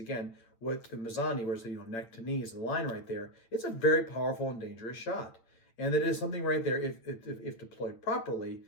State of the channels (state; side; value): late; right; 9.0 ms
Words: what the Mezzano, where's the neck to knee is the line right there. It's a very powerful and dangerous shot. And that is something right there, if deployed properly,